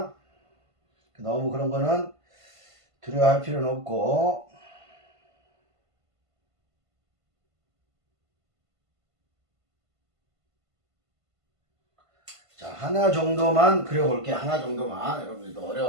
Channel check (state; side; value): late; left; 1.5 ms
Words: 너무 그런 거는 두려워할 필요는 없고, 자, 하나 정도만 그려볼게. 하나 정도만. 여러분들도